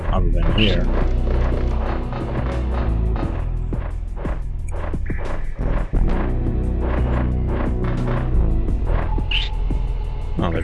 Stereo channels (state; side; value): identical; both; correlation 1.00